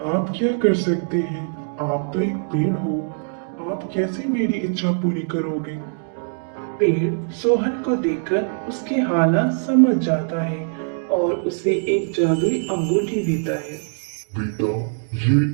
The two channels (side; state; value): left; silent; digital silence